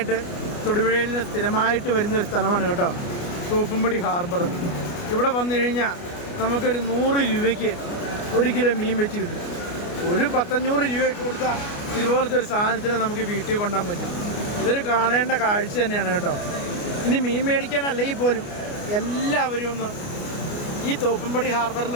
തൊടുപുഴയിൽ നിന്ന് സ്ഥിരമായിട്ട് വരുന്നൊരു സ്ഥലമാണ് കേട്ടോ, തോപ്പുംപടി ഹാർബർ. ഇവിടെ വന്നു കഴിഞ്ഞാൽ നമുക്കൊരു 100 രൂപയ്ക്ക് 1 കിലോ മീൻ വെച്ച് കിട്ടും. ഒരു 100-100 രൂപയ്ക്ക് കൊടുത്താൽ ഇതുപോലത്തെ ഒരു സാധനത്തിന് നമുക്ക് വീട്ടിൽ കൊണ്ടുപോകാൻ പറ്റും. ഇതൊരു കാണേണ്ട കാഴ്ച തന്നെയാണ് കേട്ടോ. ഇനി മീൻ മേടിക്കാനല്ലെങ്കിൽ പോലും എല്ലാവരും ഒന്ന് ഈ തോപ്പുംപടി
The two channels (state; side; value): late; right; 29 ms